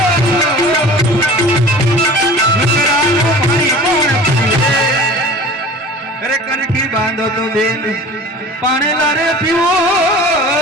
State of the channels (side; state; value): both; normal; correlation 0.41